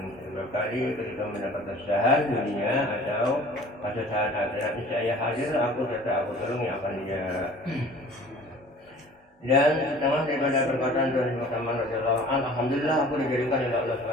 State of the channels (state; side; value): normal; both; correlation 0.47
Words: berkali ketika mendapat kesusahan dunia atau kesusahan akhirat, niscaya hadir aku serta aku tolong yang akan dia. Dan setengah daripada perkataan Tuhan Yesus Saman radhiyallahu anhu, alhamdulillah aku dijadikan oleh Allah